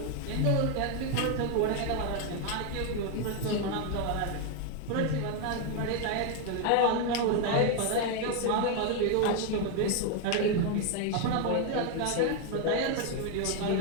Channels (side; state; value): both; different; correlation 0.01